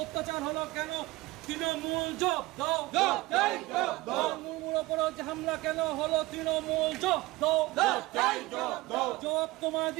হলো কেন তৃণমূল জব্দ মুর্মুর ওপর যে হামলা কেন হলো তৃণমূল জব্দ জবাব তোমায়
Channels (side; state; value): left; quieter; 20.2 dB